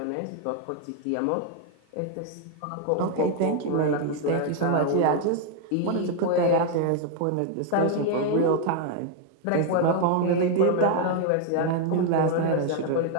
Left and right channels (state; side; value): different; both; correlation 0.00